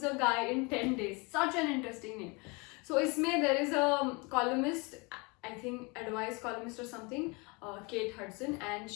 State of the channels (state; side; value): quieter; right; 28.6 dB